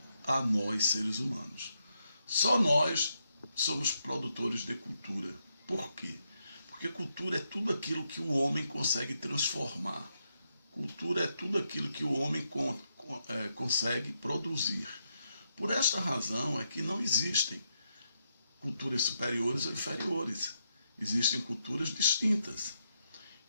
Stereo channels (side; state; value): both; inverted; correlation -0.81